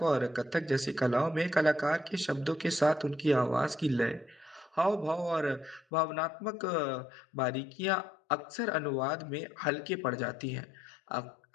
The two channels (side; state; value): right; drops out; at 5.8 s